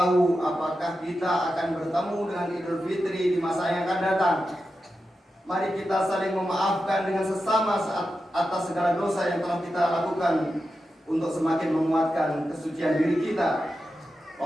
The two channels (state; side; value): normal; both; correlation 0.90